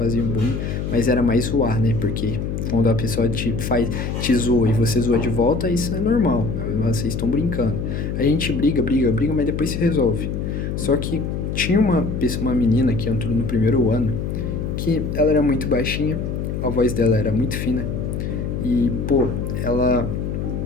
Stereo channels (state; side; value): noise; left; hum, 3 dB below the sound